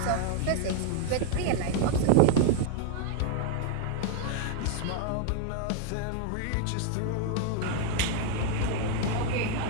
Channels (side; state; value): both; different; correlation 0.00